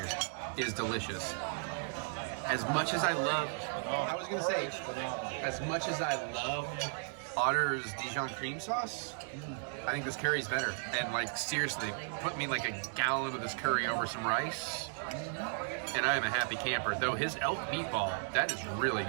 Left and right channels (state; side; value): silent; left; 54 dB below the other